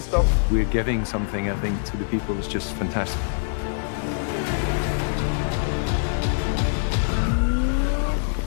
up. We're giving something, I think, to the people is just fantastic.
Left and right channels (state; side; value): silent; right; digital silence